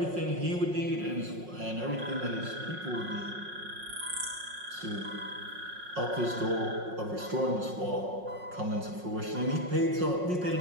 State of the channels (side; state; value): left; late; 5.5 ms